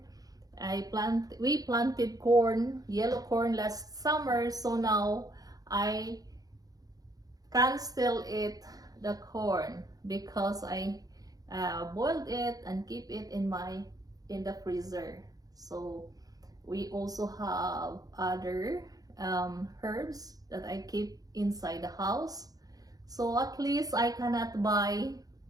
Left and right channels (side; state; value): left; late; 0.18 ms